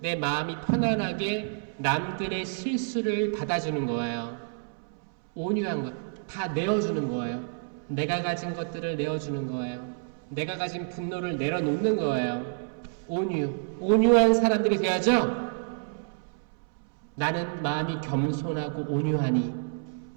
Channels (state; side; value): silent; left; 59 dB below the other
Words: 내 마음이 편안하게 남들의 실수를 받아주는 거예요. 온유한 것. 다 내어주는 거예요. 내가 가진 것들을 내어주는 거예요. 내가 가진 분노를 내려놓는 거예요. 온유. 온유한 사람들이 돼야죠? 나는 마음이 겸손하고 온유하니